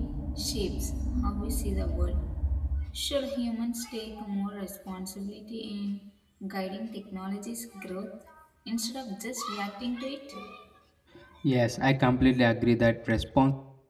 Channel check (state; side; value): identical; both; correlation 1.00